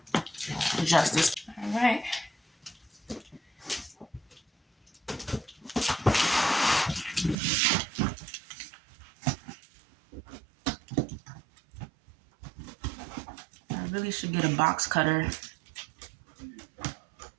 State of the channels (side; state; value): left; drops out; at 7.4 s